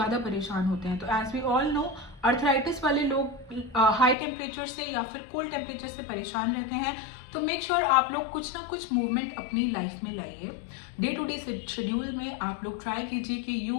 परेशान होते हैं। तो as we all know, arthritis वाले लोग हाई टेम्परेचर से या फिर कोल्ड टेम्परेचर से परेशान रहते हैं। तो मेक श्योर आप लोग कुछ ना कुछ मूवमेंट अपनी लाइफ में लाइए। डे टू डे शेड्यूल में आप लोग ट्राई कीजिए कि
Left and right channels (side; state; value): right; drops out; at 4.2 s